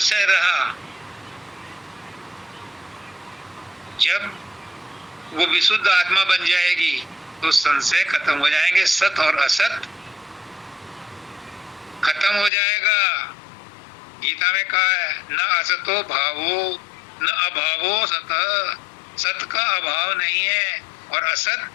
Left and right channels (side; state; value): right; drops out; at 12.5 s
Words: रहा, जब वो विशुद्ध आत्मा बन जाएगी तो संशय खत्म हो जाएंगे। सत और असत खत्म हो जाएगा। गीता में कहा है, न असतो भावो न अभावो सत। सत का अभाव नहीं है और असत